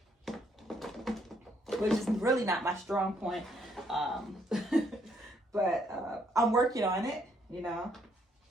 which is really not my strong point. But I'm working on it, you know.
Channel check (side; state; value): both; normal; correlation 0.70